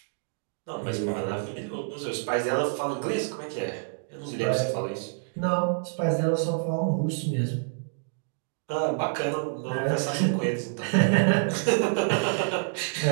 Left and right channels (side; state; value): left; silent; digital silence